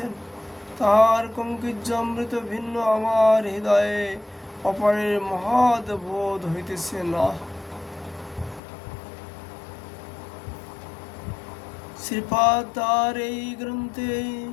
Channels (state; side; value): drops out; right; at 8.6 s